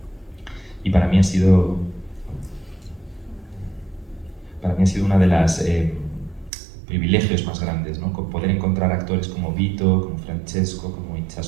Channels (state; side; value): drops out; left; at 6.5 s